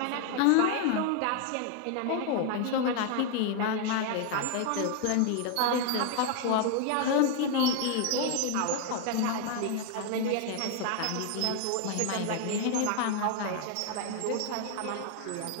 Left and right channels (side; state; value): both; different; correlation 0.00